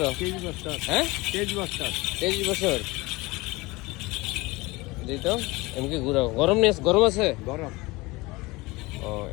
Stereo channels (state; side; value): quieter; right; 22.5 dB